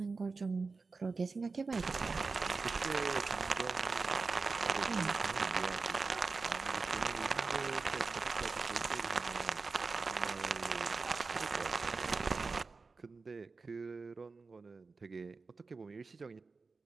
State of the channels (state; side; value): quieter; left; 4.2 dB